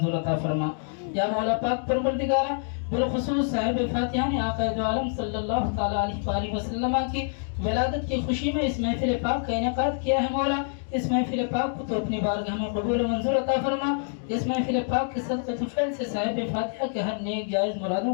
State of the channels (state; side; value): silent; right; digital silence